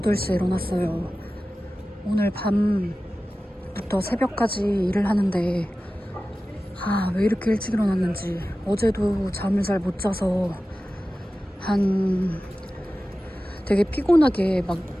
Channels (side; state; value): both; normal; correlation 0.95